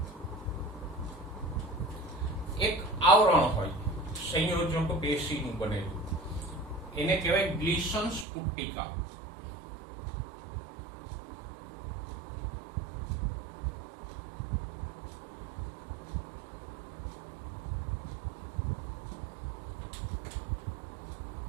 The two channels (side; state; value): left; drops out; at 8.2 s